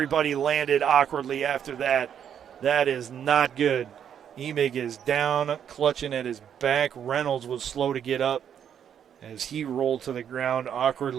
landed awkwardly after that. That is not good. Emig is down, clutching at his back. Reynolds was slow to get up as he rolled to the ground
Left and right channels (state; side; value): quieter; left; 8.8 dB